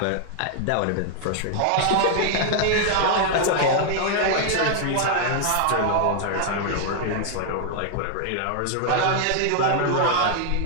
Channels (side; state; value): both; different; correlation 0.00